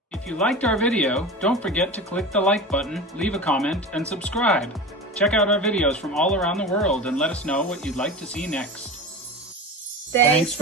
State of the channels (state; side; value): normal; both; correlation 0.30